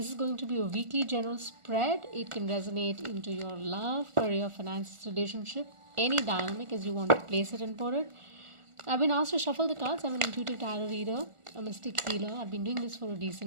is going to be a weekly general spread. It can resonate into your love, career, finances, relationship, any dynamic as you want to place it and put it. I've been asked to shuffle the cards. I'm an intuitive tarot reader, a mystic healer. I've been doing this for a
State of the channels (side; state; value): left; late; 1.4 ms